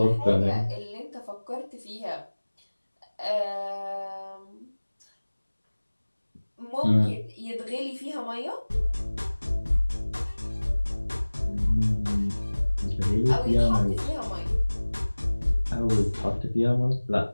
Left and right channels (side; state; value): both; inverted; correlation -1.00